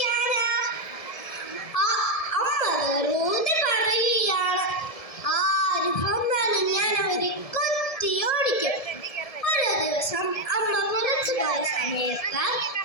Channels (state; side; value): late; right; 1.7 ms